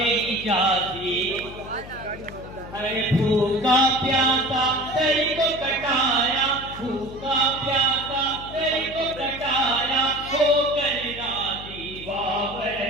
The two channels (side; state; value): left; noise; hum, 14 dB below the sound